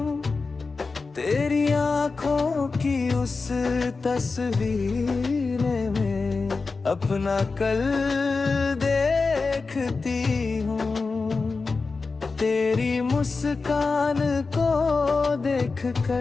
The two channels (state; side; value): quieter; right; 4.2 dB